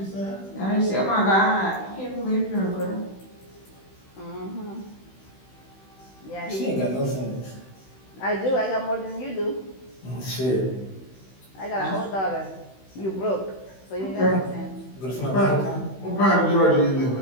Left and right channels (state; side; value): late; right; 16 ms